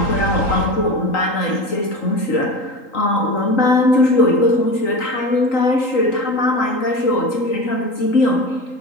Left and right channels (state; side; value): late; right; 3.8 ms